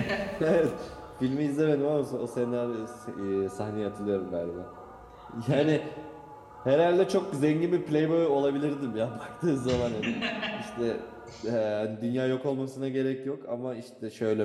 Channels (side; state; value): both; identical; correlation 1.00